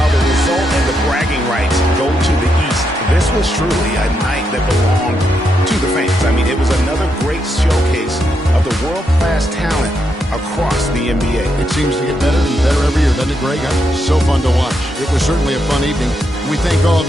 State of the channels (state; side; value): normal; both; correlation 0.81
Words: the result and the bragging rights go to the East, this was truly a night that belonged to the fans. I mean, it was another great showcase of the world-class talent across the NBA. It seems to get better and better every year, doesn't it, Greg? So fun to watch. It was certainly a fun evening. We thank all